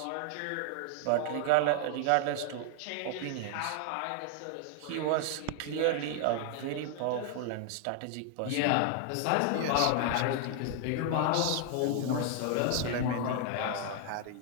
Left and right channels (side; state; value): both; different; correlation 0.00